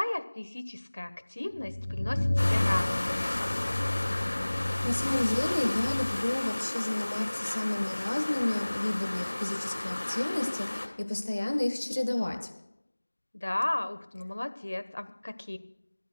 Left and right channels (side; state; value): both; inverted; correlation -1.00